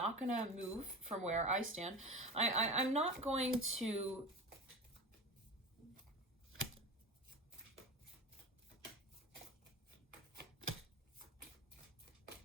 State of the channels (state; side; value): normal; both; correlation 0.30